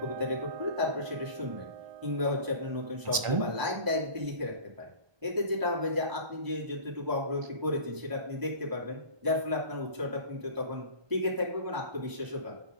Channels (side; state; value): left; late; 1.4 ms